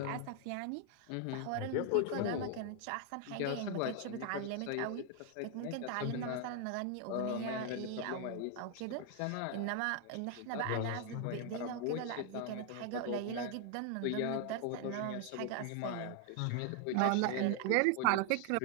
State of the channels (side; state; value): both; different; correlation 0.00